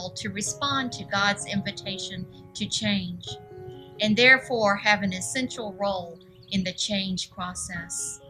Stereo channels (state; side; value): identical; both; correlation 1.00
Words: to respond to God's invitation to change, and therefore have an essential role in the change process.